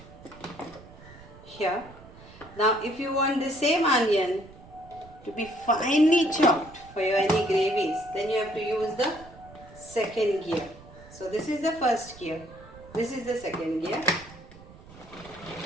Here. Now if you want the same onion to be finely chopped for your any gravies, then you have to use the second gear. So this is the first gear, this is the second gear.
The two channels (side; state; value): right; noise; rumble, 20 dB below the sound